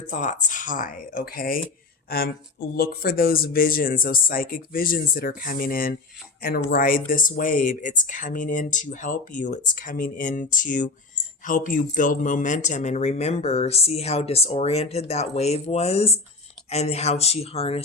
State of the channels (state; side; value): quieter; right; 3.5 dB